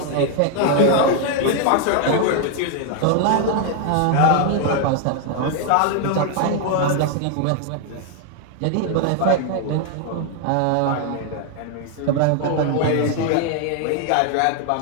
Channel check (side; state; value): both; different; correlation 0.00